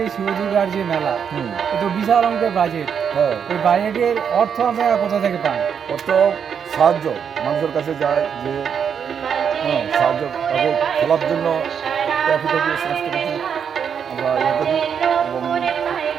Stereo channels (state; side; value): quieter; left; 7.4 dB